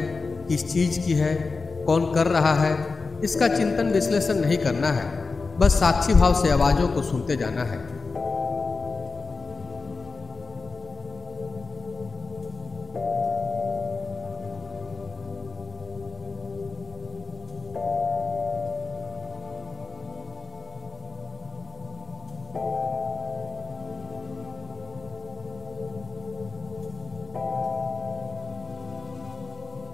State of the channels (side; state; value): right; quieter; 4.2 dB